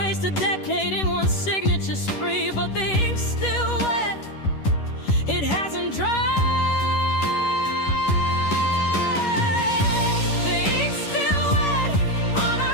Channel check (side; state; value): right; late; 10 ms